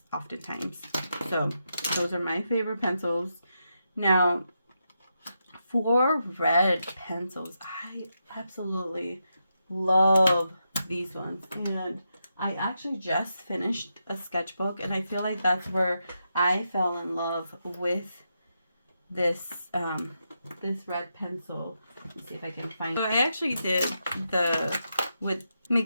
oftentimes. So those are my favorite pencils. Now, for red pencils, I absolutely love these ones, and I actually just finished a sketchbook, and I feel like that's where I fell in love with this this red pencil. Let's see if I can find. So I actually did with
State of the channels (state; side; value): inverted; both; correlation -0.84